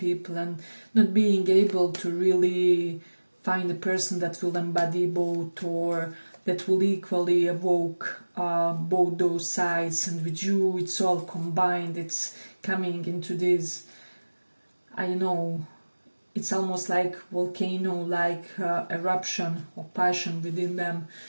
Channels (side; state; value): both; inverted; correlation -1.00